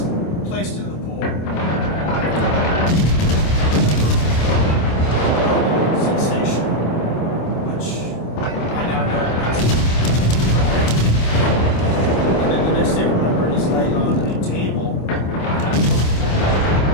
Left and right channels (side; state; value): right; late; 26 ms